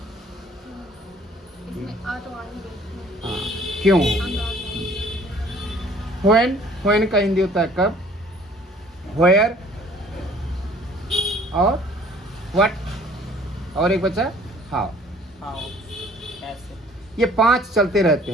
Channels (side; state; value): both; normal; correlation 0.54